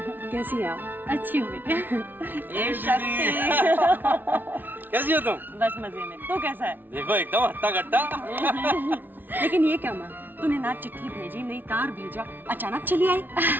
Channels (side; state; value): left; late; 0.090 ms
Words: कैसी है आप? अच्छी हूँ बेटे। ए शक्ति। कैसी हो तुम? बस मजे में। तू कैसा है? देखो एकदम हट्टा कट्टा। लेकिन ये क्या माँ, तूने ना चिट्ठी भेजी, नहीं तार भेजा, अचानक चली आई।